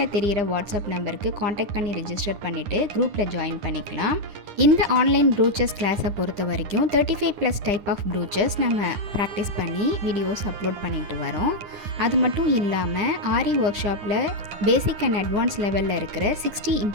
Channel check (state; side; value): late; left; 9.9 ms